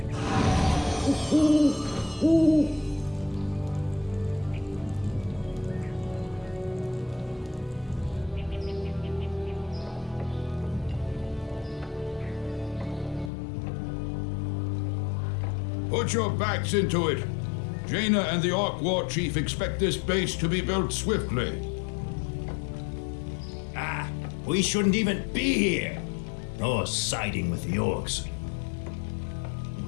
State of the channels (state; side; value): drops out; right; at 13.3 s